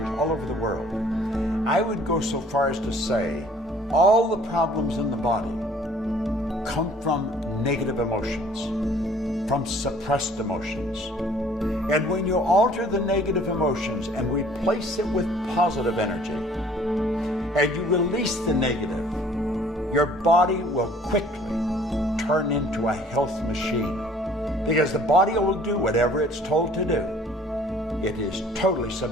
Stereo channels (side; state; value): both; normal; correlation 0.55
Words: all over the world, I would go so far as to say all the problems in the body come from negative emotions, from suppressed emotions. And when you alter the negative emotions and replace it with positive energy, and you release the negative, your body will quickly turn into a health machine. Because the body will do whatever it's told to do. It is totally